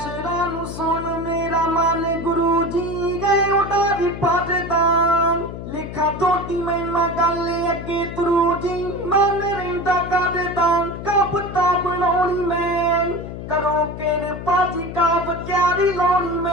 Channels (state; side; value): noise; left; hum, 9 dB below the sound